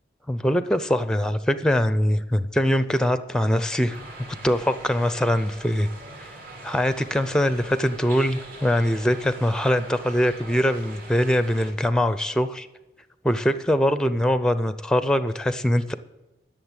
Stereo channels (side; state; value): both; normal; correlation 0.89